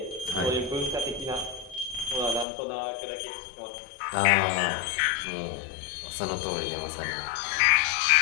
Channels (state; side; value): drops out; right; at 2.5 s